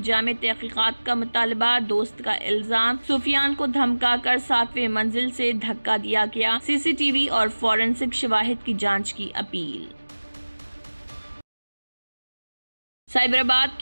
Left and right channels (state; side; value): inverted; both; correlation -1.00